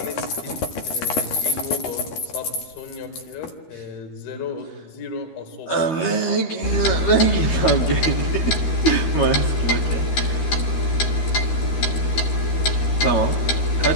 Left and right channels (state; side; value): late; right; 13 ms